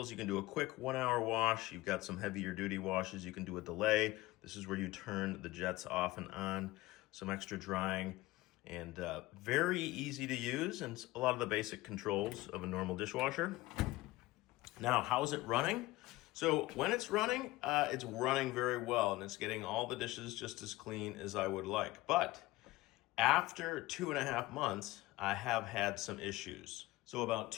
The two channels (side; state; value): right; quieter; 19.1 dB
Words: You can do a quick 1-hour wash. You've got some heavier duty washes. You can do a delay. This is where you turn the jets off and on. Some extra drying, and very easy to use, and a lot of the basic controls of a normal dishwasher. Now, how is it running? So when it's running very well, and it's getting all the dishes just as clean as I would like. But after 2.5 months, I have had some issues. So about